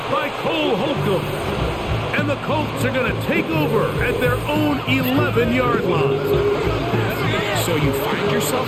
by Cole Holcomb. And the Colts are going to take over at their own 11-yard line. So you find yourself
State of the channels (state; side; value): identical; both; correlation 1.00